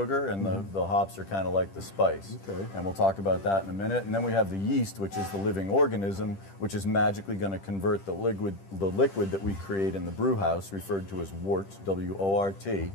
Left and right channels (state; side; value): late; right; 10 ms